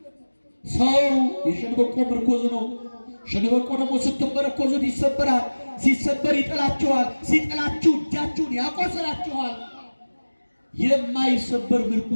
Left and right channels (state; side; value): inverted; both; correlation -1.00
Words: ሰው የሸንበቆ ምርኮዝ ነው። ሸንበቆ ደግሞ ስትመረኮዙት ይሰበራል። ሲሰበር ይጥላችኋል። ሲጥላችሁ እጃችሁን ያቆስላችኋል። የማይሰበር